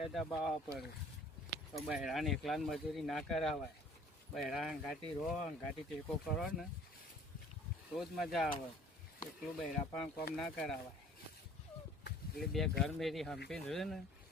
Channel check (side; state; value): both; normal; correlation 0.52